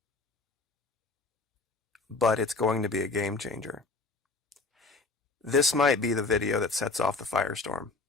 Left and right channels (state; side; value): quieter; right; 3.7 dB